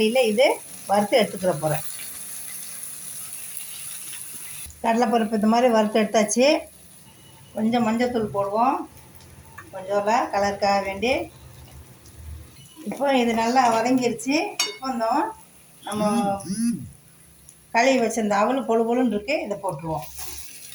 இது வறுத்து எடுத்துக்கிற போகிறேன். கடலைப்பருப்பு இந்த மாதிரி வறுத்து எடுத்தாச்சு. கொஞ்சம் மஞ்சத்தூள் போடுவோம், கொஞ்சம் கலருக்காக வேண்டி. இப்போ இது நல்லா வதங்கிருச்சு. இப்போ நம்ம கழுவி வச்சிருந்த அவல் பொழுன்னு இருக்குது, இதை போட்டுருவோம்.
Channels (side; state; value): both; identical; correlation 1.00